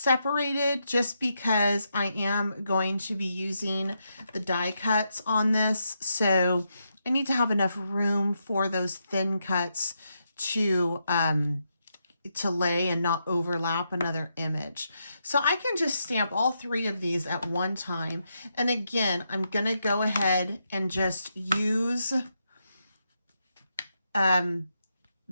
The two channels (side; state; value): both; inverted; correlation -0.82